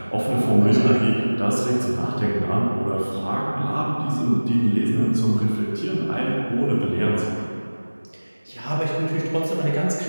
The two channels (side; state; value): both; inverted; correlation -1.00